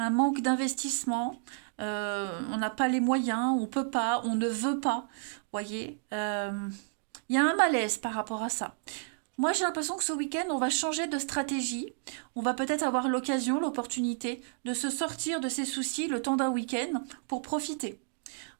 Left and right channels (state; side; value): silent; left; digital silence